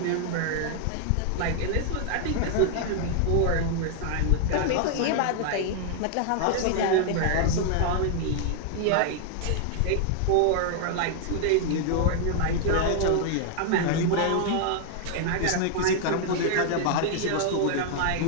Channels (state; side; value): different; both; correlation 0.00